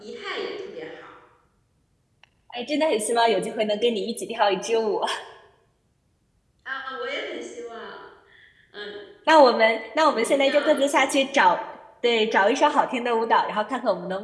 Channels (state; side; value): identical; both; correlation 1.00